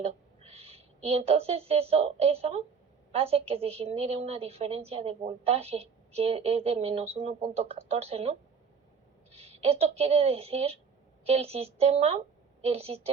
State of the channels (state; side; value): quieter; left; 5.9 dB